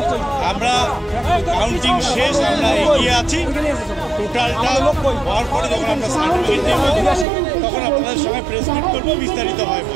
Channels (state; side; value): drops out; left; at 7.2 s